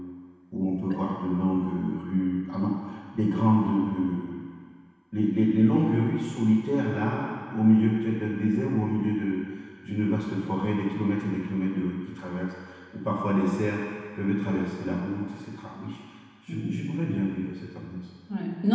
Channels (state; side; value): identical; both; correlation 1.00